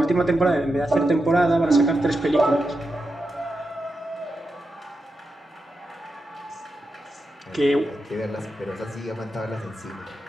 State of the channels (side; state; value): both; normal; correlation 0.88